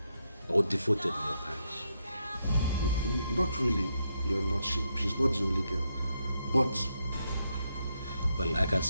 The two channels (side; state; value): both; inverted; correlation -0.80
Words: or devoted in your parish? Not really, Your Lordship. She's not the only girl. But... Well, I can